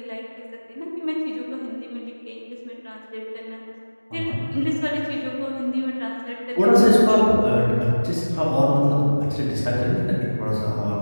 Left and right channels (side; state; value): both; inverted; correlation -1.00